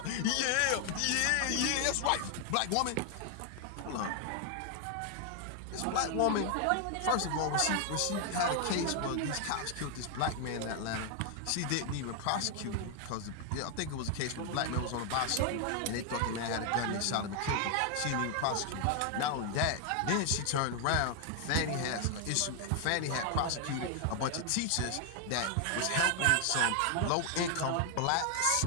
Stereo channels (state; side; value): different; both; correlation 0.00